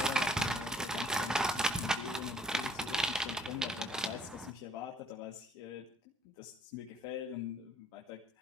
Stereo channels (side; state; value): both; normal; correlation 0.61